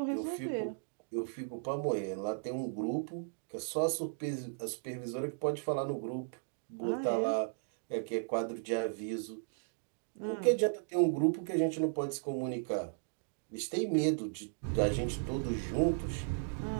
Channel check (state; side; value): silent; left; digital silence